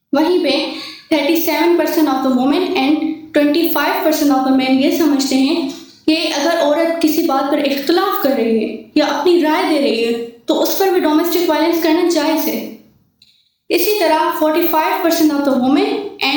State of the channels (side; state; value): both; identical; correlation 1.00